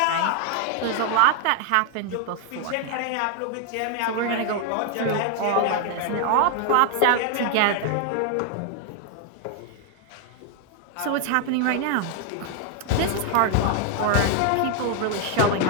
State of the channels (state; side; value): different; both; correlation 0.00